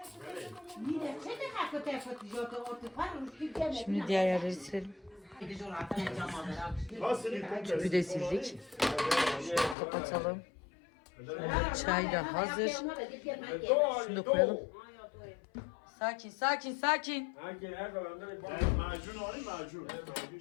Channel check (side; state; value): right; drops out; at 9.8 s